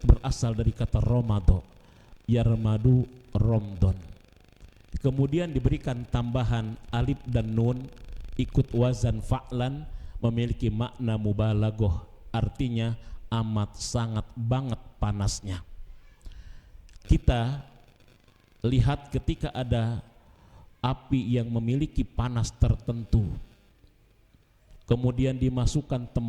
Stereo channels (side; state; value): both; identical; correlation 1.00